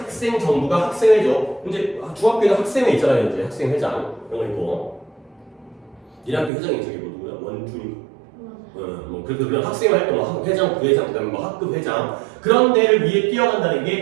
정부가 학생회죠. 이제 중학교에는 학생회 있잖아요. 이제 학생회장 이런 거 있고 1학교 회장이 저기 뭐 누구야? 원준이. 뭐 그런 학생 활동, 회장, 부회장, 그다음에 뭐 학급 회장 그런 데를 위해 뛰어간다는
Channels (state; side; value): drops out; left; at 6.5 s